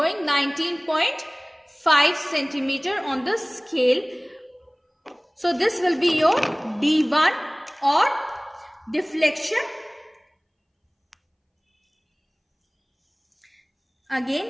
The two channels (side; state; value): both; identical; correlation 1.00